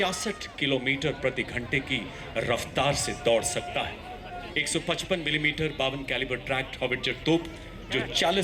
किलोमीटर प्रति घंटे की रफ्तार से दौड़ सकता है। 155 मिलीमीटर 52 कैलिबर ट्रैक्ट हॉविट्जर तोप जो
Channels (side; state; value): both; identical; correlation 1.00